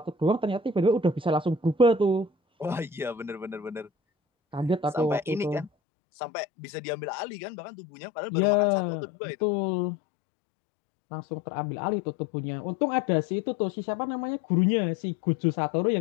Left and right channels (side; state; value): right; drops out; at 5.7 s